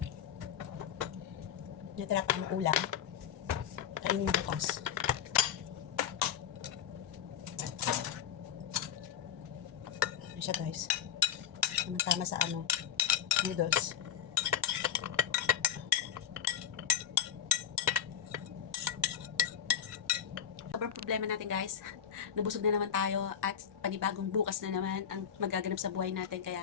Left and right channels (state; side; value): quieter; right; 9.1 dB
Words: Natira ko ng ulam. Kainin bukas. Ano siya guys? Tama sa noodles. Sobrang problema natin guys. Nabusog na naman tayo at panibagong bukas na naman ang magaganap sa buhay natin.